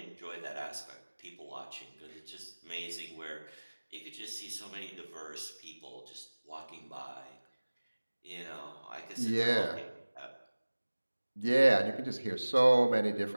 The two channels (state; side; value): inverted; both; correlation -1.00